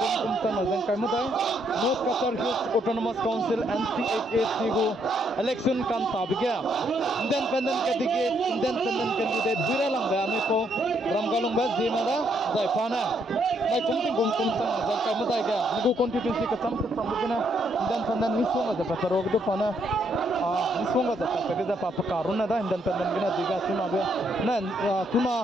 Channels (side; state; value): both; normal; correlation 0.73